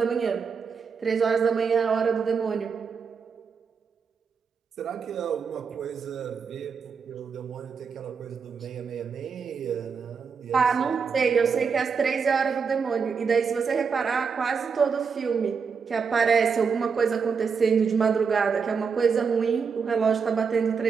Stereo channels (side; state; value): left; quieter; 5.9 dB